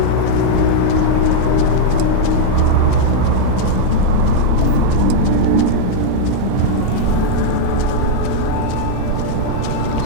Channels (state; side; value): different; both; correlation -0.01